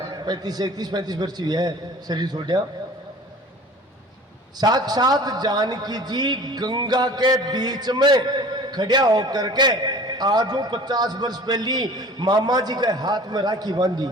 35 वर्ष हुआ है शरीर छोड़ा। साक्षात जानकी जी गंगा के बीच में खड़ा होकर के आज 50 वर्ष पहली मामा जी के हाथ में राखी बांधी।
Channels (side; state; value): both; normal; correlation 0.44